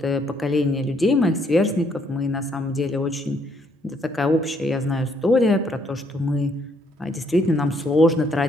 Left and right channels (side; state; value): both; normal; correlation 0.69